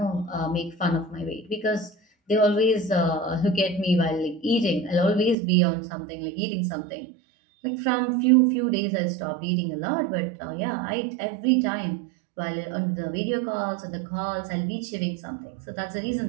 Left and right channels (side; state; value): left; drops out; at 5.4 s